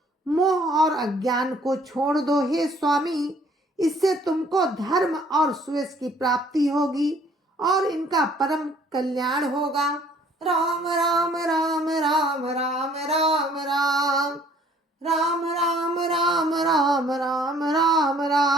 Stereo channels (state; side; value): normal; both; correlation 0.58